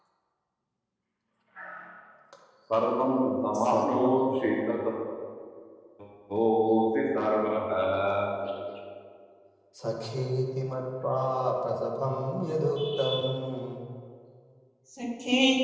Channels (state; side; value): identical; both; correlation 1.00